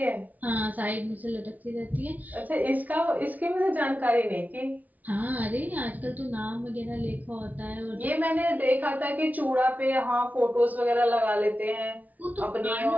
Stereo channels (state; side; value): late; left; 0.076 ms